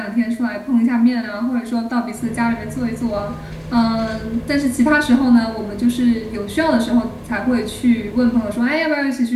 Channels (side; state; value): both; identical; correlation 1.00